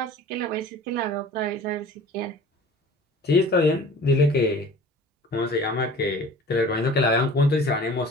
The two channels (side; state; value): both; normal; correlation 0.44